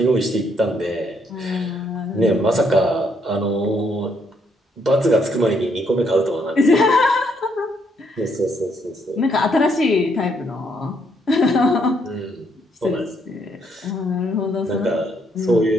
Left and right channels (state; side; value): normal; both; correlation 0.72